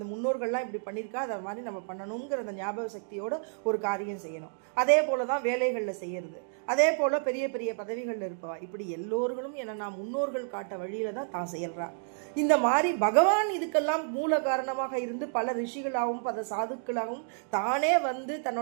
முன்னோர்கள்லாம் இப்படி பண்ணியிருக்கா, அதை மாதிரி நம்ம பண்ணணுங்கிற அந்த ஞாபக சக்தியோட ஒரு காரியம் செய்யணும். அதே போல தான் வேலைகளில் செய்யறது, அதே போல் பெரிய பெரிய பதவிகளில் இருப்பவா, இப்படி எல்லோர்களும் என்னன்னா முன்னோர்கள் காட்ட வழியில தான் தான் செயல்றா. இந்த மாதிரி பகவான் இதுக்கெல்லாம் மூல காரணமாக இருந்து பல ரிஷிகளாகவும் பல சாதுக்களாகவும் தானே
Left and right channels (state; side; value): silent; left; digital silence